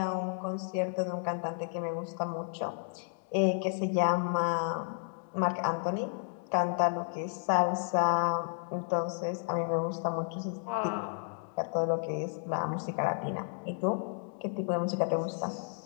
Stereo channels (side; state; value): right; silent; 56 dB below the other